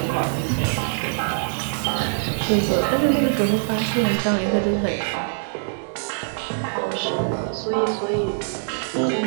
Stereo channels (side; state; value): left; silent; digital silence